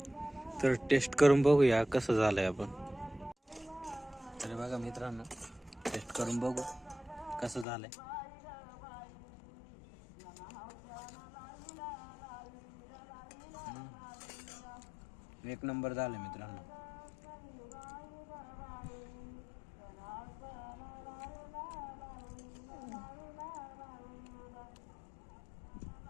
तर टेस्ट करून बघूया कसं झालंय आपण. तर बघा मित्रांनो टेस्ट करून बघू कसं झालंय. एक नंबर झालं मित्रांनो.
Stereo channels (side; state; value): right; drops out; at 7.7 s